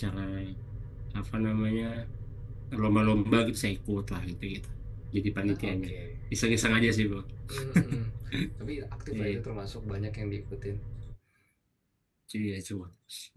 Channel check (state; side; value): identical; both; correlation 1.00